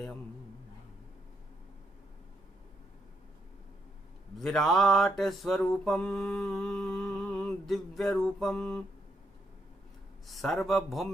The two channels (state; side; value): normal; both; correlation 0.78